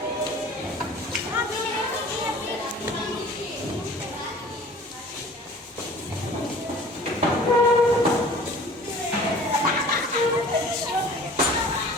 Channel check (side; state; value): both; normal; correlation 0.46